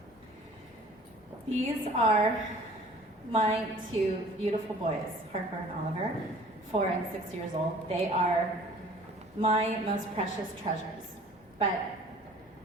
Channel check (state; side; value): normal; both; correlation 0.50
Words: These are my two beautiful boys, Harper and Oliver, 4 and 6 years old. They are my most precious treasures, but